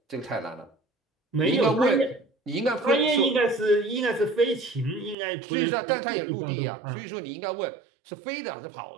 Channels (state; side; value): drops out; left; at 5.2 s